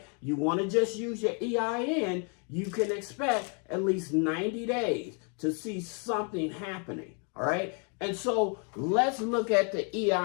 you want to just use your EIN, you can expect at least 90 days to see something happening, all right? And so let's look at the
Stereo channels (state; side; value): quieter; right; 38.0 dB